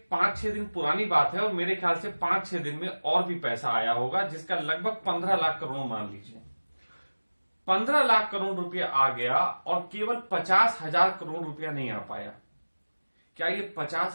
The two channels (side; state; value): both; inverted; correlation -1.00